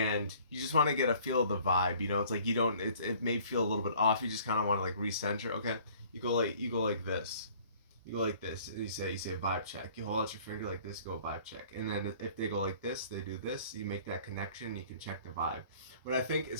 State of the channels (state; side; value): inverted; both; correlation -0.54